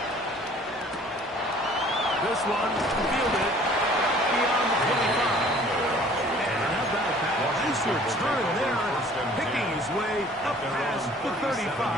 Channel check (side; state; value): both; normal; correlation 0.53